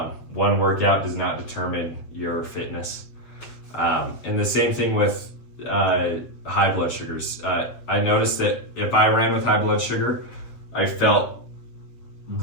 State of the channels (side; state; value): right; late; 7.8 ms